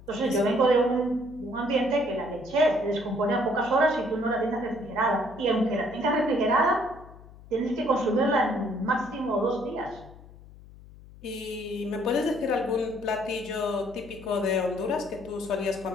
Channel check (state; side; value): noise; left; hum, 20 dB below the sound